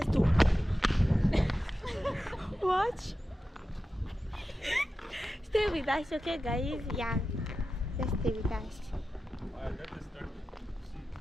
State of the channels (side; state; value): both; normal; correlation 0.92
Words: to watch. Stay with us, okay, guys? Yeah, just stay with us.